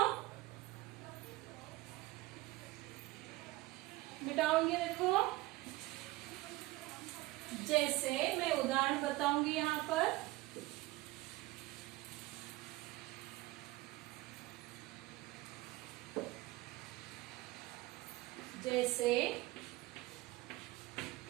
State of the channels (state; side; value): quieter; left; 19.5 dB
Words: मिटाऊंगी। देखो, जैसे मैं उदाहरण बताऊंगी यहाँ पर। जैसे